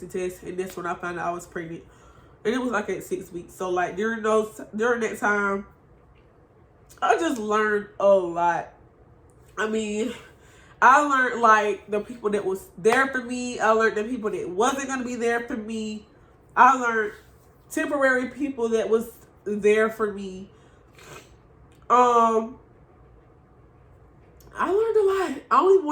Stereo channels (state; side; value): identical; both; correlation 1.00